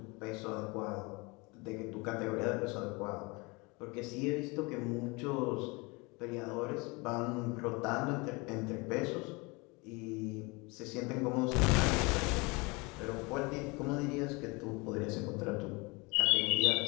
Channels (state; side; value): quieter; right; 26.9 dB